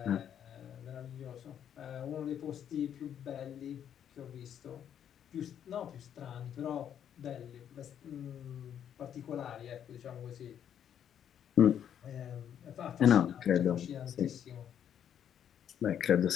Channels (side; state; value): right; quieter; 9.3 dB